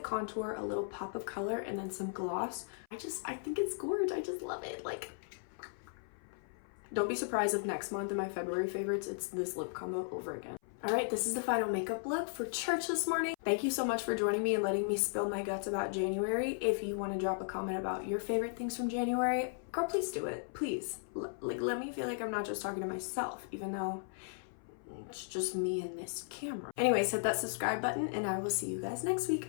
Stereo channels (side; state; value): right; silent; 54 dB below the other